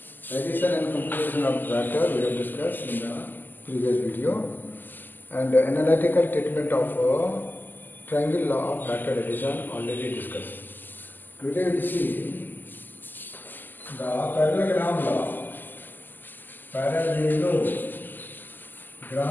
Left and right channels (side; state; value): right; late; 0.089 ms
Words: addition and computation of vector we have discussed in the previous video, and analytical treatment of triangle law of vector addition already discussed. Today we will see the parallelogram